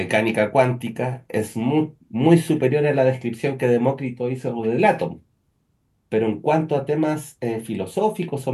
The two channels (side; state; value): both; identical; correlation 1.00